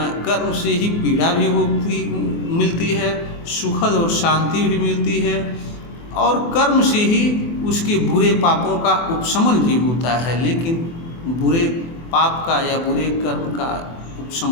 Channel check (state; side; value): late; right; 24 ms